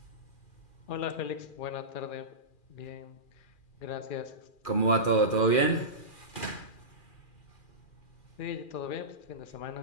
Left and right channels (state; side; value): late; right; 2.4 ms